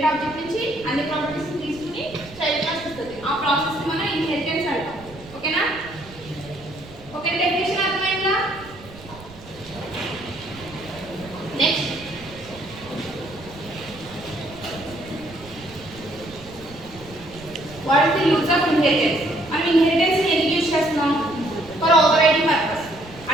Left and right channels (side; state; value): right; noise; rumble, 19 dB below the sound